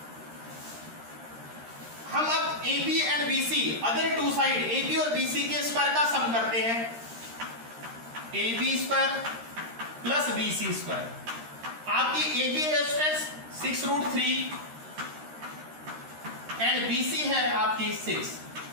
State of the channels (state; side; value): late; left; 13 ms